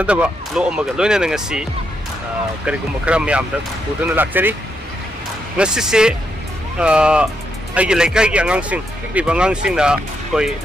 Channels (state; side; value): normal; both; correlation 0.80